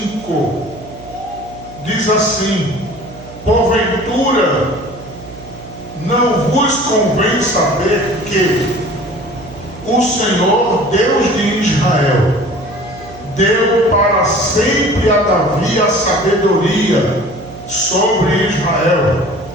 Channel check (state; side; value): noise; right; hum, 17 dB below the sound